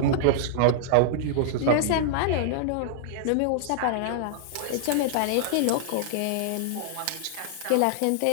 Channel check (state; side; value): different; both; correlation -0.01